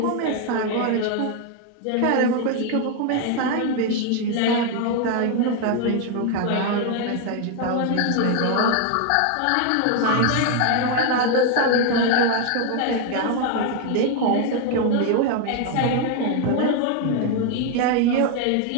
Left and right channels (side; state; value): both; different; correlation 0.01